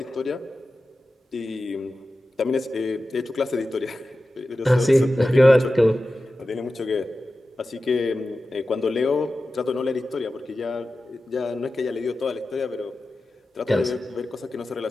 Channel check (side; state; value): both; normal; correlation 0.94